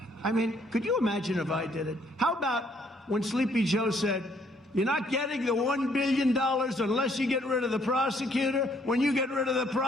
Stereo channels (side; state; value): both; normal; correlation 0.66